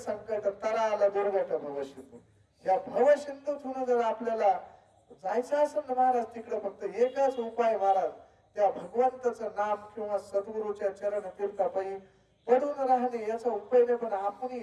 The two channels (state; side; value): identical; both; correlation 1.00